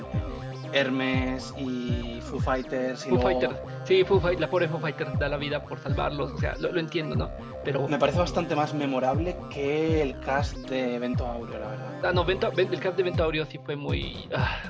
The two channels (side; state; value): both; identical; correlation 1.00